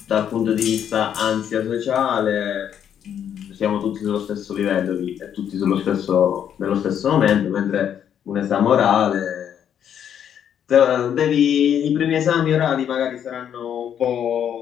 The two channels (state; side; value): quieter; right; 9.1 dB